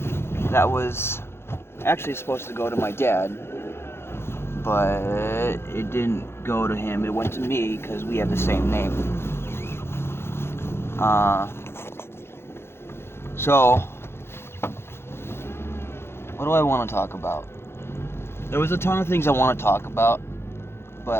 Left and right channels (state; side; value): late; right; 0.12 ms